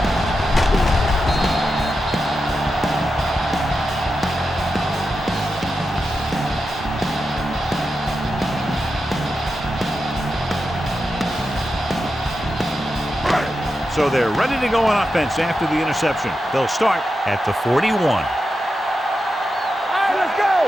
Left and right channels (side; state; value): both; normal; correlation 0.89